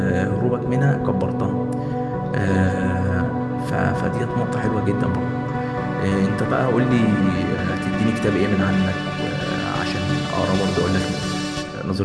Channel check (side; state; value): both; identical; correlation 1.00